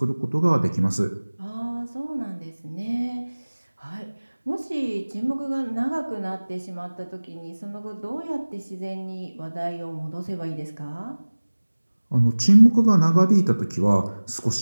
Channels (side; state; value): both; inverted; correlation -1.00